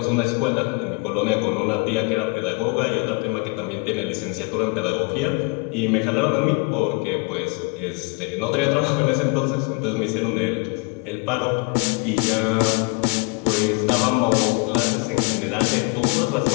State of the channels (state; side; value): quieter; right; 31.4 dB